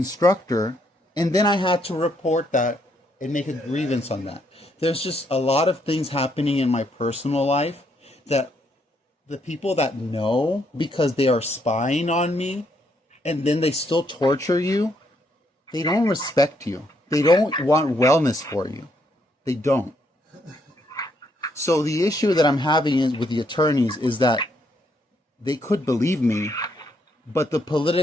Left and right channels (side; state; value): both; normal; correlation 0.74